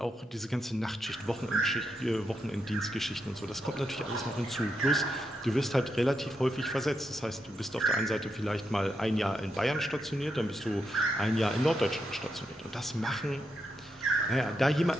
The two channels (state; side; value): normal; both; correlation 0.83